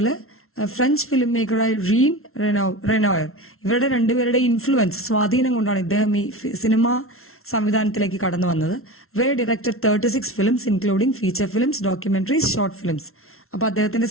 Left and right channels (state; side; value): late; right; 0.62 ms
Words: French film മേക്കറായ Jean Renoir, ഇവരുടെ രണ്ടുപേരുടെ influence, സ്വാധീനം കൊണ്ടാണ് ഇദ്ദേഹം ഈ സിനിമ സംവിധാനത്തിലേക്ക് കടന്നു വന്നത്. Ray directed 36 films including feature films, documentaries, short films. അപ്പൊ അദ്ദേഹത്തിന്റെ